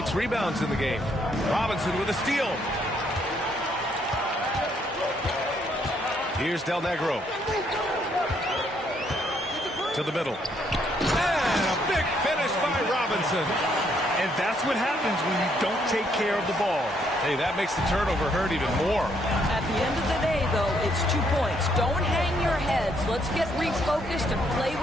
rebounds in the game. Robinson with a steal. Here's Del Negro. To the middle. And a big finish by Robinson. And that's what happens when you don't take care of the ball. Hey, that makes the turnover hurt even more. At the end of the day, though, it's 2 points. Don't hang your heads. Let's get refocused and play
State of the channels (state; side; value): normal; both; correlation 0.71